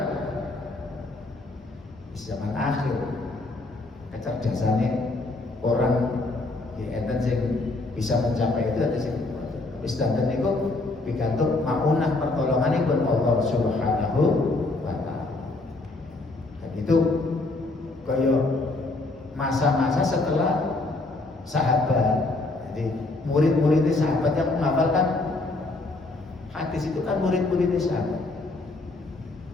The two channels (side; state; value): right; quieter; 3.1 dB